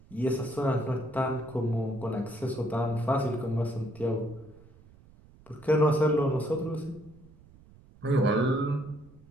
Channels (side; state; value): right; noise; rumble, 24 dB below the sound